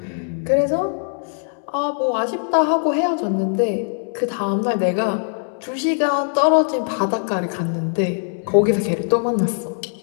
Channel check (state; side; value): silent; right; 65 dB below the other